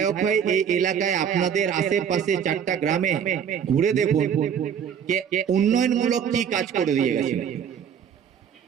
হয়ে এই এলাকায় আপনাদের আশেপাশে 4টা গ্রামে ঘুরে দেখুন উন্নয়নমূলক কি কাজ করে দিয়ে গেছেন।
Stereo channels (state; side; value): quieter; left; 8.1 dB